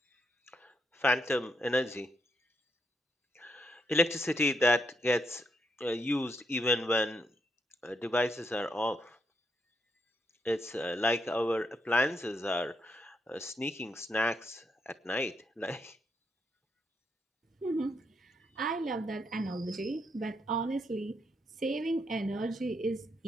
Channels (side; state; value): both; normal; correlation 0.78